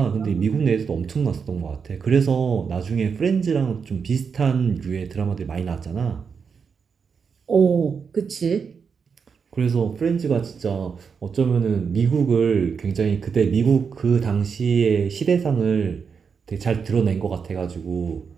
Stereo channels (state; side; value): quieter; left; 6.0 dB